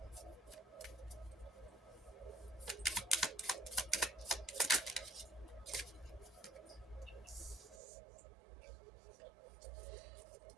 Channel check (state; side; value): drops out; left; at 7.8 s